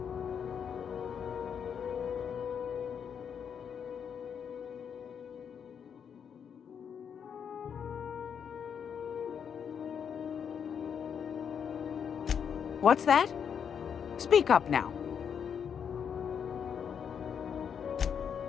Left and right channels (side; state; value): right; quieter; 7.5 dB